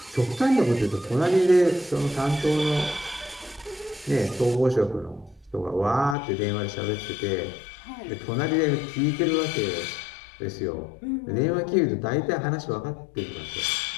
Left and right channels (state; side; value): drops out; right; at 6.2 s